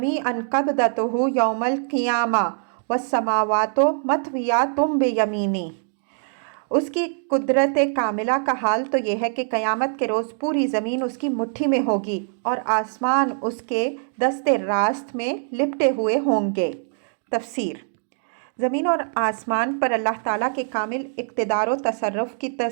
قَبْضَتُهُ يَوْمَ الْقِيَامَةِ وَالسَّمَاوَاتُ مَطْوِيَّاتٌ بِيَمِينِهِ، اس کی قدرت کاملہ کا حال تو یہ ہے کہ قیامت کے روز پوری زمین اس کی مٹھی میں ہوگی اور آسمان اس کے دست راست میں لپٹے ہوئے ہوں گے۔ تفسیر، زمین اور آسمان پر اللہ تعالیٰ کے کامل اقتدار و تصرف کی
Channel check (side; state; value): left; silent; digital silence